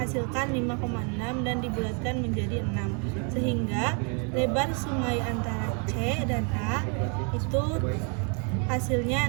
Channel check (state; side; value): quieter; left; 37.6 dB